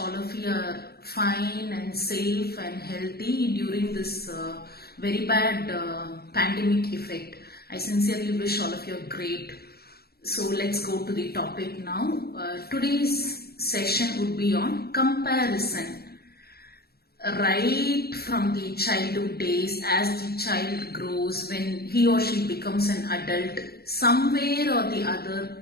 of you are fine and safe and healthy during this very bad pandemic effect. I sincerely wish all of you are great. So let's go to the topic now. Today's session would be on comparison. Right from the childhood days, as the child grows, when he or she becomes an adult, somewhere or the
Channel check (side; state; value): right; late; 0.46 ms